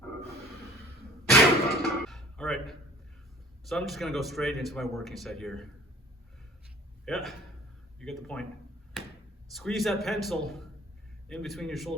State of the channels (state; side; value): normal; both; correlation 0.50